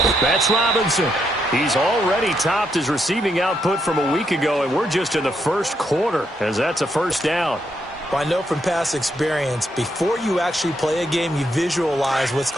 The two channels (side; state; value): both; normal; correlation 0.78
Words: That's Robinson. He's already topped his receiving output from a week ago, and we're just in the first quarter, as that's a first down. Well, I know from past experience, before you actually play a game, you visualize what's